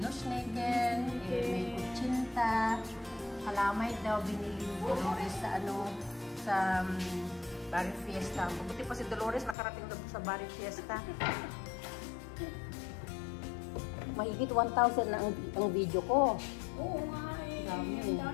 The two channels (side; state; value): right; drops out; at 9.6 s